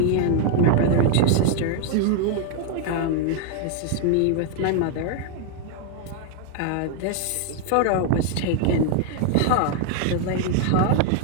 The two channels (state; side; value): different; both; correlation 0.00